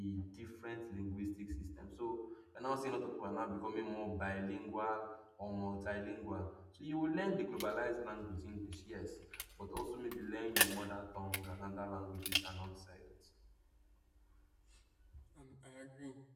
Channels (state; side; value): identical; both; correlation 1.00